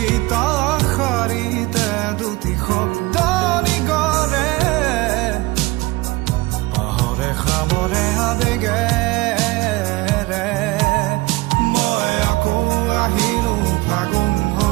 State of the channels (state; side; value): quieter; left; 21.6 dB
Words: শাৰীতে দুটি শব্দ নিগৰে পাহৰে খামৰে আবেগেৰে মই আকৌ আহিলো ফাগুন